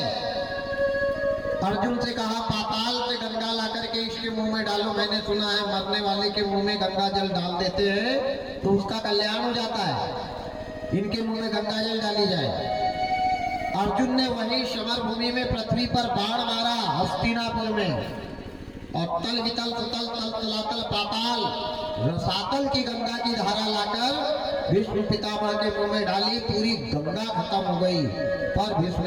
अर्जुन से कहा, पाताल से गंगा ला करके इसके मुंह में डालो। मैंने सुना है मरने वाले के मुंह में गंगा जल डाल देते हैं तो उसका कल्याण हो जाता है। इनके मुंह में गंगा जल डाली जाए। अर्जुन ने वही समर भूमि में पृथ्वी पर बाण मारा, हस्तिनापुर में, और तल वितल सुतल तल तलातल पाताल रसातल की गंगा की धारा लाकर भीष्म पितामह के मुंह में डाली। पूरी गंगा खत्म हो गई, पर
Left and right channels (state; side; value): identical; both; correlation 1.00